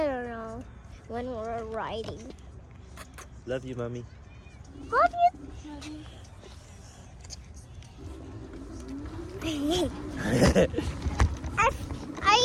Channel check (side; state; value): both; identical; correlation 1.00